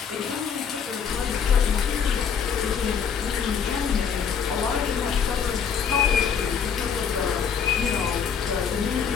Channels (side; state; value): right; quieter; 7.0 dB